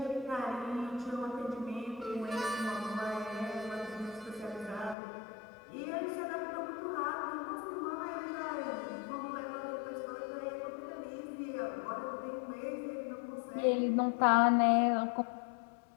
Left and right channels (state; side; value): drops out; right; at 5.0 s